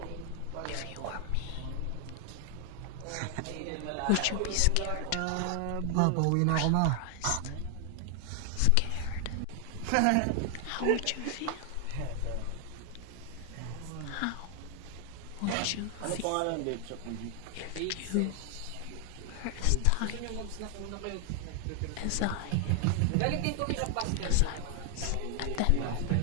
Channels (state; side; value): different; both; correlation 0.00